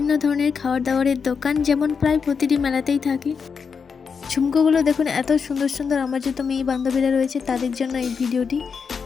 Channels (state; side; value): quieter; right; 5.9 dB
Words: ধরনের খাবার দাবারের দোকান, যেমন প্রায় প্রতিটি মেলাতেই থাকে। ঝুমকোগুলো দেখুন এত সুন্দর সুন্দর, আমার যত মেয়ে বান্ধবীরা রয়েছে তাদের জন্য এই ভিডিওটি।